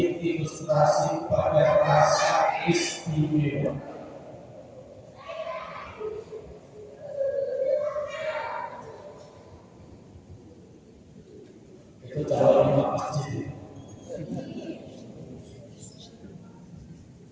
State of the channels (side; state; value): both; identical; correlation 1.00